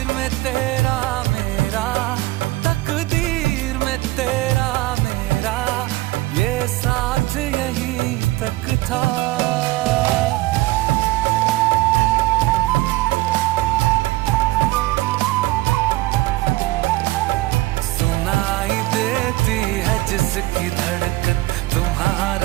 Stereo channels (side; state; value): left; quieter; 18.8 dB